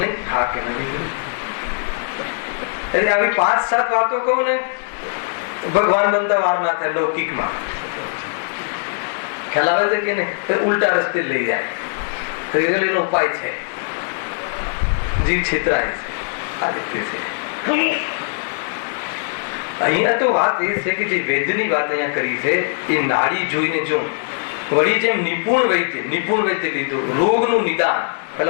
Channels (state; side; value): silent; right; digital silence